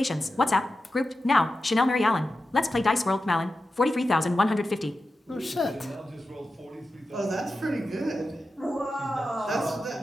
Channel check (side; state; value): both; normal; correlation 0.91